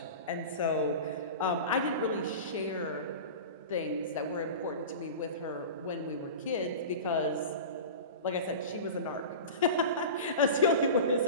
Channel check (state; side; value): inverted; both; correlation -0.31